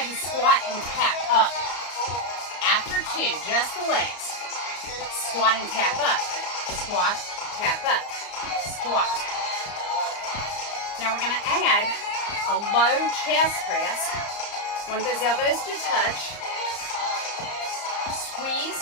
you squat and tap up. After 2, just the legs. Squat and tap up. Squat, tap up. Squat. Now we're gonna add a low chest press. Want those elbows to touch.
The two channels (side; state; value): right; late; 34 ms